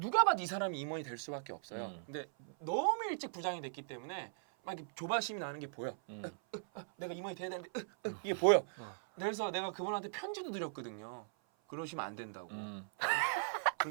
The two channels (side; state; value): left; silent; 52 dB below the other